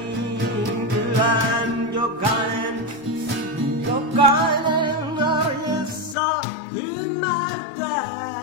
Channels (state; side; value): drops out; right; at 6.2 s